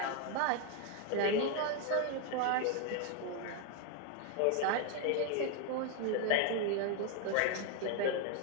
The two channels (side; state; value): both; different; correlation 0.01